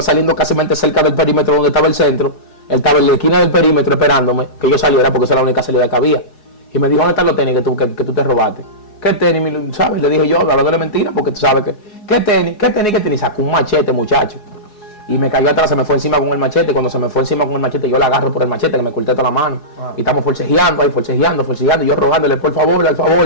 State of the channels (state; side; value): late; right; 4.7 ms